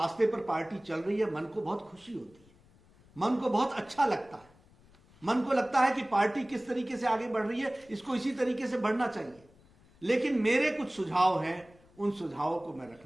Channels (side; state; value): left; noise; rumble, 28 dB below the sound